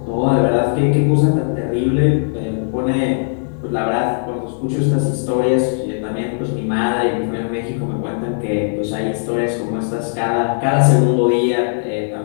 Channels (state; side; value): silent; right; digital silence